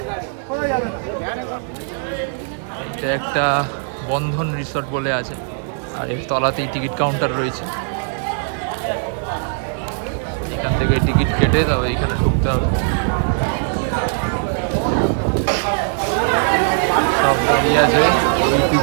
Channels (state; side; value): silent; left; 66 dB below the other